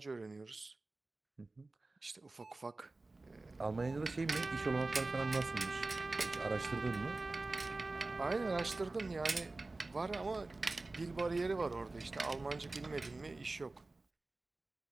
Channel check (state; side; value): quieter; left; 3.2 dB